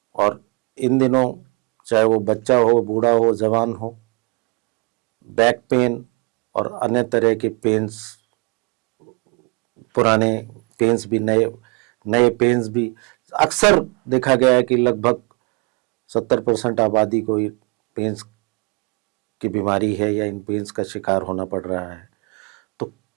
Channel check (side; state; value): left; quieter; 32.6 dB